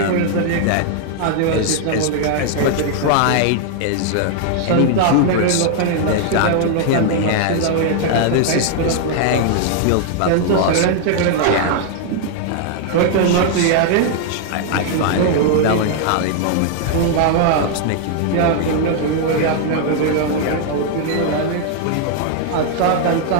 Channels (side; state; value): both; different; correlation 0.00